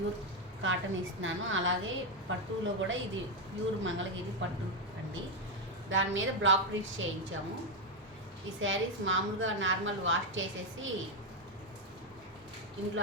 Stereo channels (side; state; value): both; normal; correlation 0.04